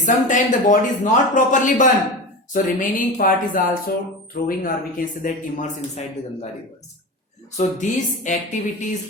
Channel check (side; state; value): both; normal; correlation 0.27